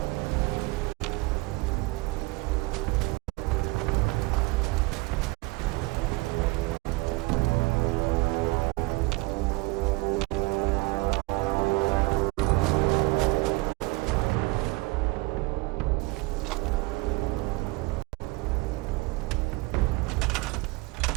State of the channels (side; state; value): left; quieter; 23.2 dB